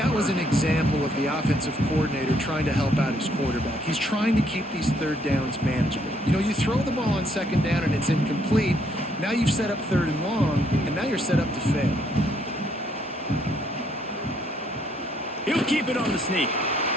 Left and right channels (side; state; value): both; normal; correlation 0.70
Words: was an example of the offensive coordinator trying to help out his quarterback. He's trying to keep these third downs manageable. You know, you throw the ball on second down and it's incomplete. Now you've set up third and long, and now you're set up to fail. He'll keep it on the sneak.